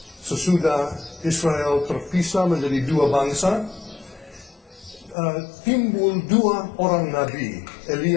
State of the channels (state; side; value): drops out; right; at 5.2 s